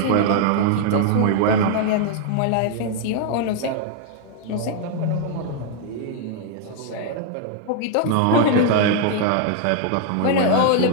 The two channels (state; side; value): different; both; correlation 0.00